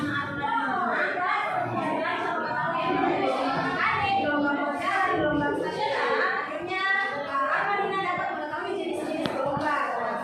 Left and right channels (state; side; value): identical; both; correlation 1.00